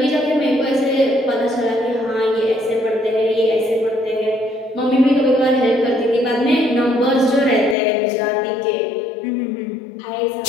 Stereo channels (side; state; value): right; drops out; at 7.8 s